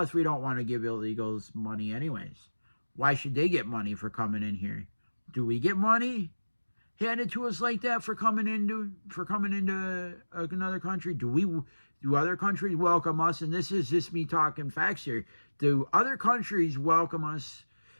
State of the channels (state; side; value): inverted; both; correlation -1.00